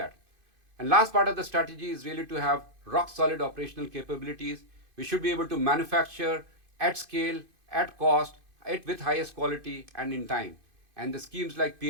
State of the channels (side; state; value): left; late; 2.5 ms